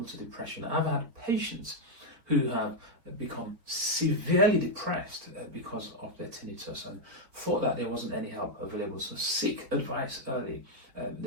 to depression. I've had patients who have become severely depressed because of their tinnitus and thought that there wasn't any help available. So seek advice early.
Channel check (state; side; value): late; left; 4.4 ms